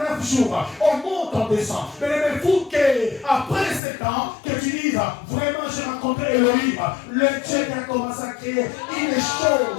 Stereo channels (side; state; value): right; drops out; at 3.8 s